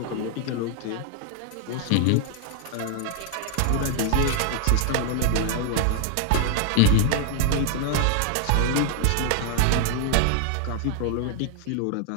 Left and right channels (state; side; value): different; both; correlation 0.00